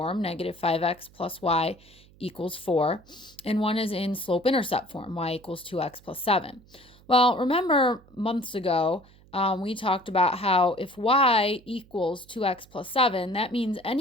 negative 5x plus y equals 4, and one is in slope-intercept form, y equals 2x plus 7. Well, remember months ago, we talked about how if y equals 2x plus 7, that means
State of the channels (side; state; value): right; noise; hum, 26 dB below the sound